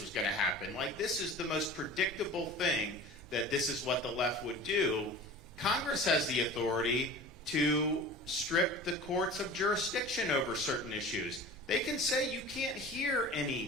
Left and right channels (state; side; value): noise; right; hum, 22 dB below the sound